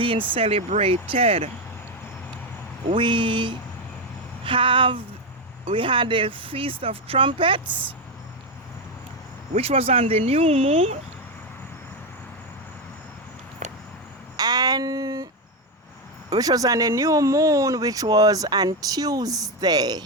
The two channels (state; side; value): normal; both; correlation 0.08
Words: celebrated. We had the Feast of Trumpets, which was on the new moon, which was on Tuesday,